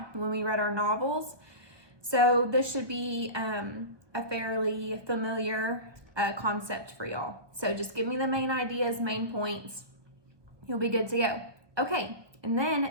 when we read our novels. So this should be a fairly familiar concept for y'all. So just give me the main ideas, main points. You'll be good to go. Okay, and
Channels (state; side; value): late; left; 1.2 ms